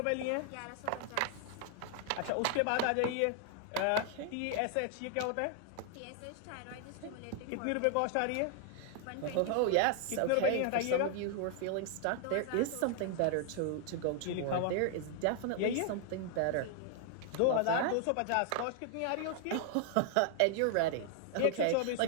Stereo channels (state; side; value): different; both; correlation 0.00